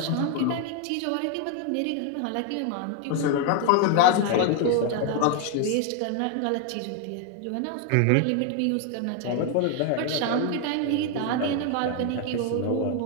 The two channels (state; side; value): different; both; correlation 0.01